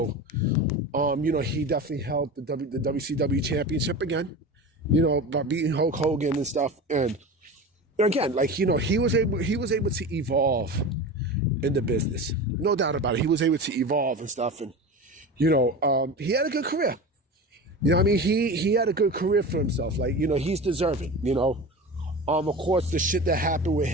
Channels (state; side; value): normal; both; correlation 0.30